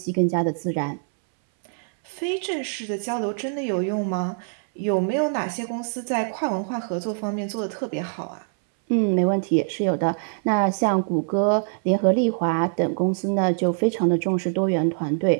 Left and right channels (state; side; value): silent; left; 63 dB below the other